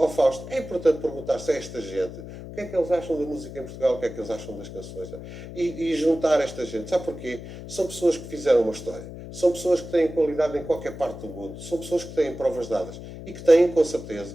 Fausto. É importante perguntar-se a esta gente o que é que eles acham da música em Portugal, o que é que eles acham das canções. E juntar esta gente. Sabe porquê? São pessoas que fizeram uma história. São pessoas que têm qualidade em qualquer parte do mundo. São pessoas que têm provas dadas e que têm, com certeza,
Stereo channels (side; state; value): left; noise; hum, 12 dB below the sound